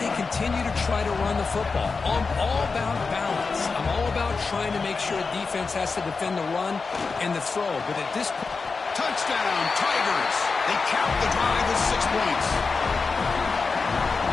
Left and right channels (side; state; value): right; quieter; 4.5 dB